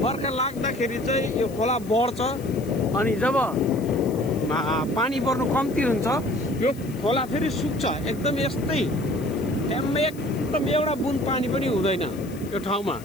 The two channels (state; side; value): noise; left; hiss, 21 dB below the sound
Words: बर्खा लाग्दाखेरि चाहिँ यो खोला बढ्छ अनि जब पानी पर्नु कम्ती हुन्छ यो खोला फेरि सुक्छ। एकदम यस्तै एकदम एउटा बुन पानी पनि हुँदैन यो ठाउँमा।